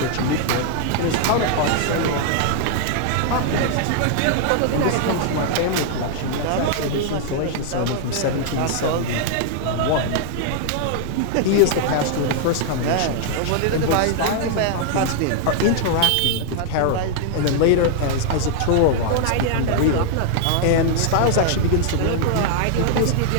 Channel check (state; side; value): different; both; correlation -0.01